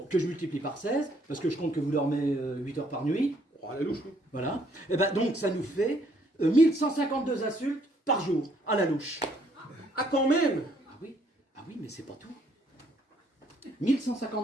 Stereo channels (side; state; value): both; normal; correlation 0.67